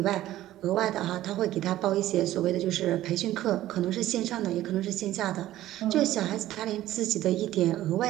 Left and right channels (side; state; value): left; quieter; 14.3 dB